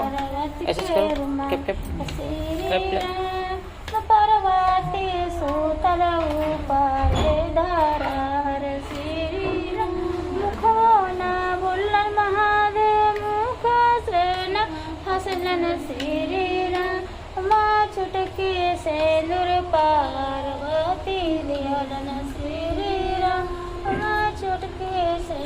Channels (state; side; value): identical; both; correlation 1.00